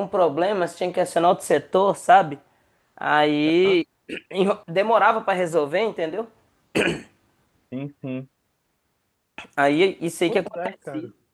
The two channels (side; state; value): both; identical; correlation 1.00